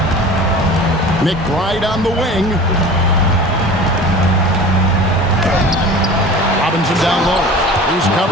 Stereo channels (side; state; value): both; normal; correlation 0.39